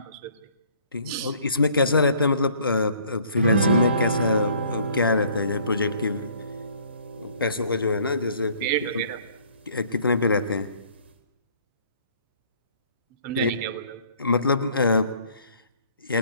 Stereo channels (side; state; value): both; inverted; correlation -0.58